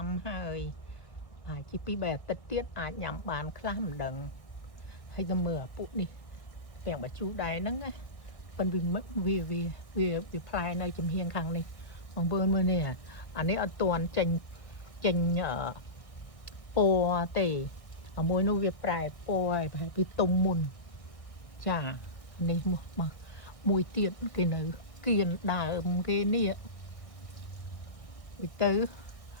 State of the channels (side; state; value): right; late; 1.6 ms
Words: ំហើយហើយជីពីរបែបអាទិត្យទៀតអាចញ៉ាំបានខ្លះមិនដឹងហើយទៅមើលអាពុកនេះពាំងបាច់ជូដែរហ្នឹងណាប៉ុន្តែវាផ្លែនៅចំហៀងខាងនេះបងប្អូនមើលនេះអានេះអត់ទាន់ចេញពណ៌ទេអាមួយនោះវាប្រែពណ៌ហើយប្រហែលពីទុំមុនចានេះមកមួយទៀតគេនៅគៀនដើមគេនេះទៅ